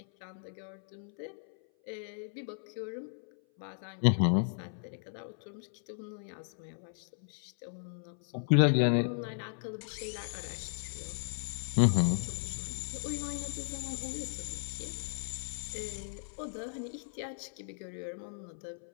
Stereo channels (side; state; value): right; silent; 54 dB below the other